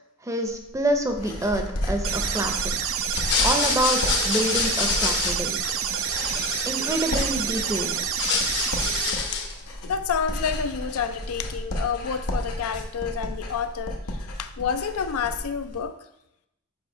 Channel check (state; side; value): normal; both; correlation 0.24